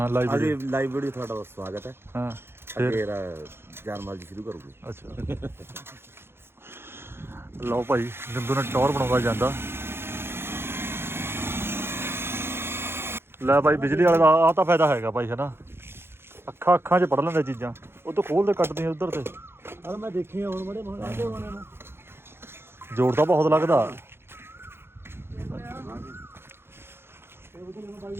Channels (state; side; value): late; left; 0.11 ms